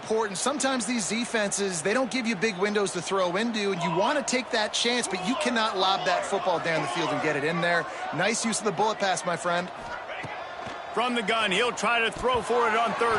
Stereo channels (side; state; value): both; identical; correlation 1.00